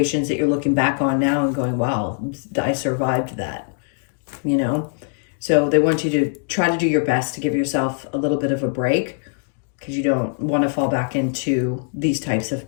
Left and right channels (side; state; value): right; silent; 64 dB below the other